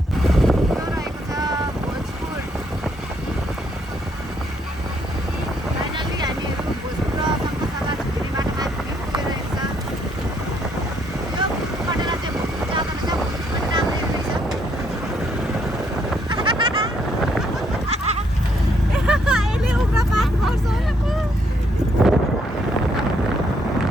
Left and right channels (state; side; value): normal; both; correlation 0.71